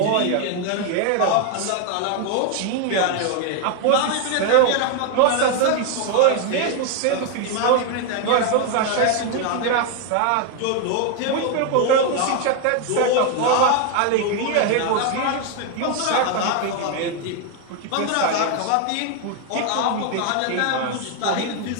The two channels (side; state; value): both; different; correlation 0.01